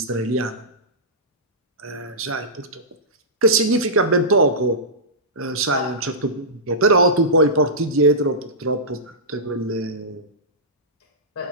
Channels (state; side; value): normal; both; correlation -0.17